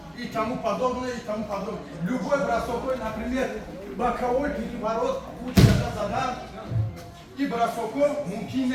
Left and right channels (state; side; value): identical; both; correlation 1.00